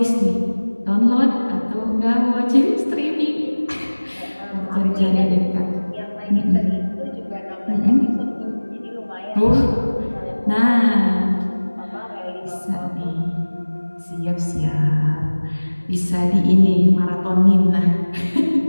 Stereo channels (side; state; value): both; inverted; correlation -1.00